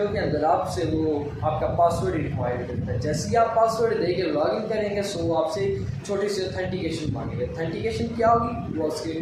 के अंदर आपसे वो आपका पासवर्ड रिक्वायर्ड करता है। जैसे ही आप पासवर्ड देके लॉगिन करेंगे सो वो आपसे छोटी सी ऑथेंटिकेशन मांगेगा। ऑथेंटिकेशन क्या होगी वो उसके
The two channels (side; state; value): both; identical; correlation 1.00